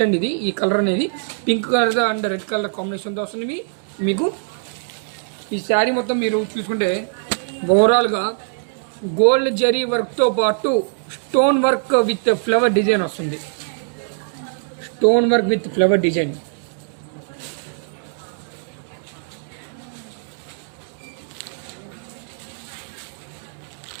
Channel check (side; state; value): left; silent; digital silence